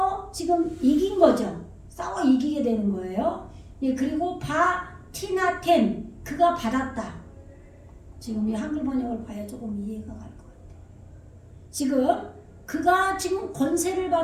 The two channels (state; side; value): identical; both; correlation 1.00